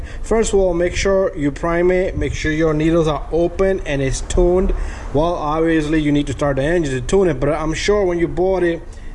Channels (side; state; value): both; identical; correlation 1.00